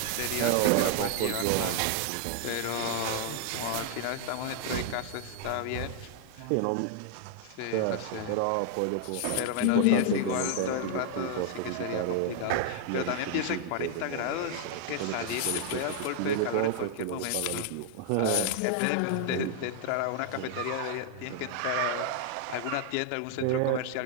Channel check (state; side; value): different; both; correlation 0.00